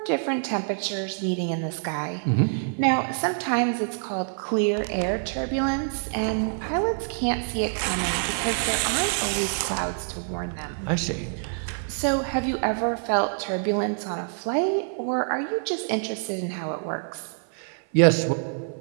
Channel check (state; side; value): silent; left; 56 dB below the other